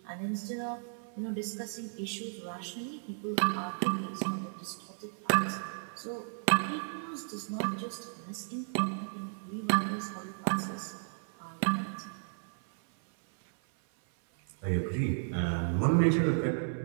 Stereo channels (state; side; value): silent; left; 55 dB below the other